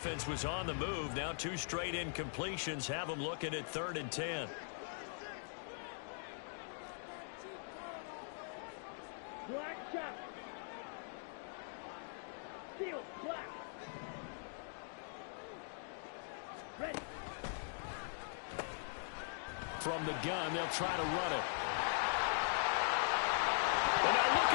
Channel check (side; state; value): right; silent; digital silence